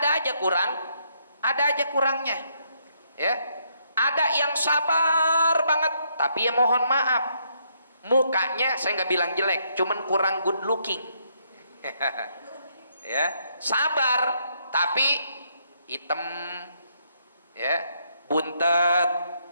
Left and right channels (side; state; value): both; inverted; correlation -0.73